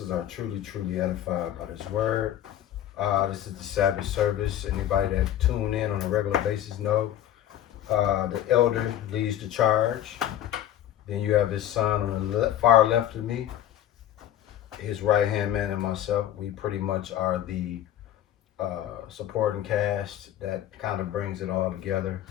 are truly, truly edified by this word. This is the Sabbath service. Anybody that tune in on a regular basis know the elder leads the charge. Then you have his son on the far left of me, his right-hand man, and myself. We pretty much are the supporting cast that kind of brings it all together.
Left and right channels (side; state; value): right; quieter; 11.8 dB